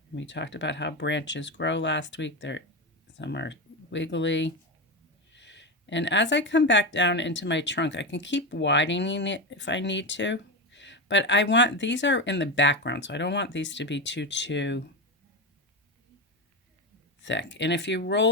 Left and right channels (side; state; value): both; normal; correlation 0.16